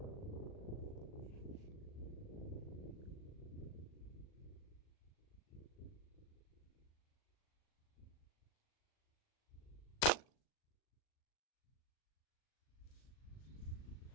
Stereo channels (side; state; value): right; late; 39 ms